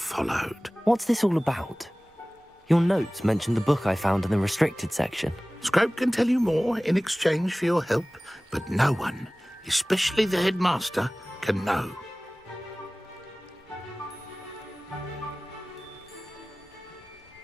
What's this all about? Your notes mentioned the book I found in the restricted section. Scrope can tell you more in exchange for your help, but no one, especially the headmaster, can know.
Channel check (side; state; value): both; normal; correlation 0.98